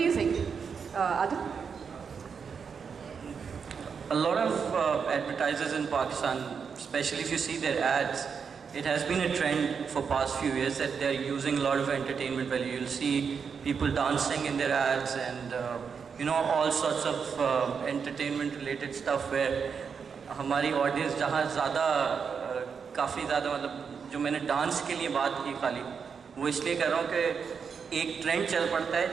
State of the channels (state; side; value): quieter; left; 6.2 dB